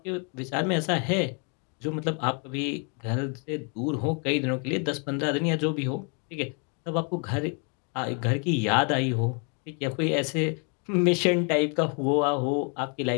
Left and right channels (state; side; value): quieter; right; 37.5 dB